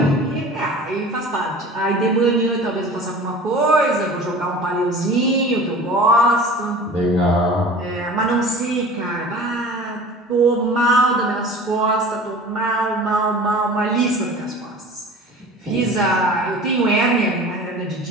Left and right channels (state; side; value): normal; both; correlation 0.40